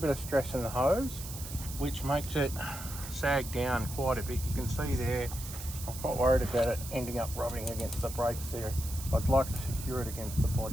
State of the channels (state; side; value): noise; right; hiss, 11 dB below the sound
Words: of stress in the hose which makes it sag down quite a bit. You can see there, I'm quite worried about it ending up rubbing against the brakes there. I'd like to secure it against the